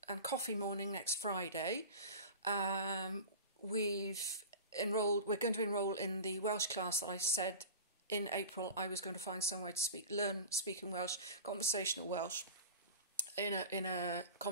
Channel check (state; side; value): inverted; both; correlation -0.33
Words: and coffee morning next Friday. We're going to enrol in the Welsh class that I said in April I was going to find somewhere to learn speaking Welsh, conversational Welsh, in a